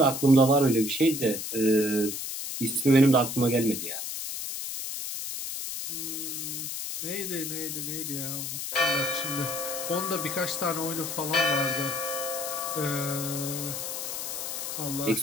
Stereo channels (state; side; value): noise; left; hiss, 5 dB below the sound